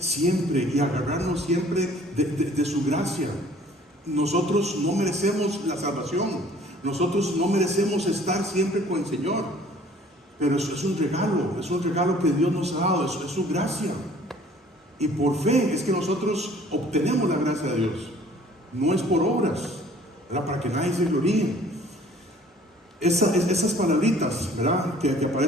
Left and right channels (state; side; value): normal; both; correlation 0.54